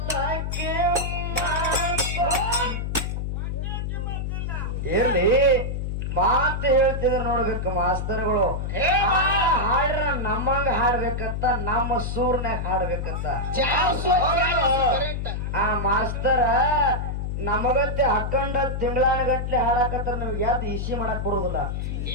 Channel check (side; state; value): left; noise; hum, 3 dB below the sound